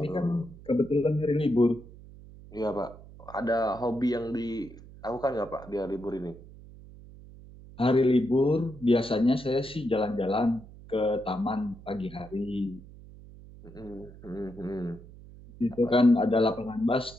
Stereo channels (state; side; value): noise; right; hum, 19 dB below the sound